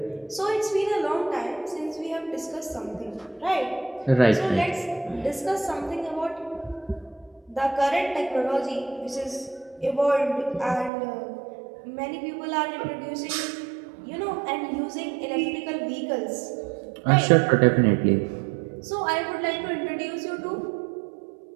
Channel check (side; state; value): left; drops out; at 10.9 s